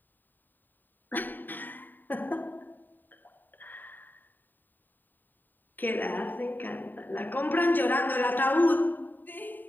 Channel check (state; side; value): late; right; 0.090 ms